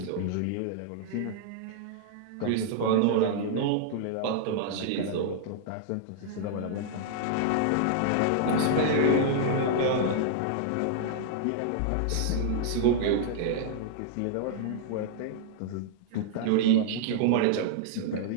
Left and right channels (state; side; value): different; both; correlation -0.01